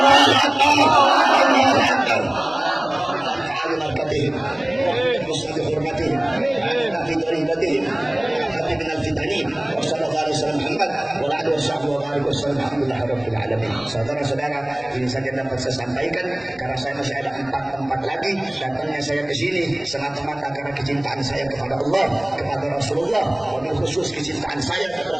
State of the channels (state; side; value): noise; left; hum, 30 dB below the sound